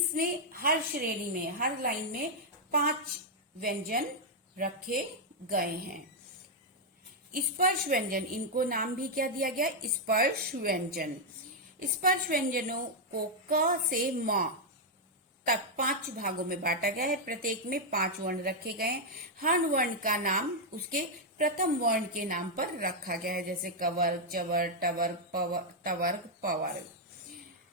हर श्रेणी में, हर लाइन में 5 व्यंजन रखे गए हैं। स्पर्श व्यंजन, इनको नाम भी क्या दिया गया, स्पर्श व्यंजन। स्पर्श व्यंजनों को क से म तक 5 भागों में बांटा गया है। प्रत्येक में 5 वर्ण रखे गए हैं। हर वर्ण का नाम उसके प्रथम वर्ण के नाम पर रखा गया है। जैसे कवर्ग, चवर्ग, टवर्ग, तवर्ग, पवर्ग।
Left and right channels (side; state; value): both; normal; correlation -0.02